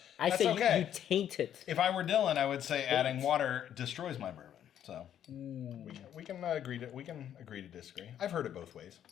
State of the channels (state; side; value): quieter; right; 10.2 dB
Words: I That's say okay. you taint it. If I were Dylan, I would say adding water destroys my bourbon. So we can agree to disagree. I've heard it both ways.